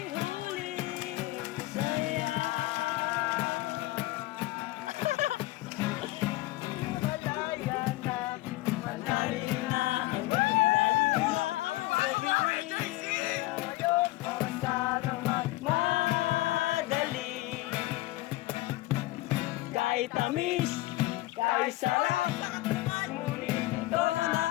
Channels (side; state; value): right; quieter; 18.7 dB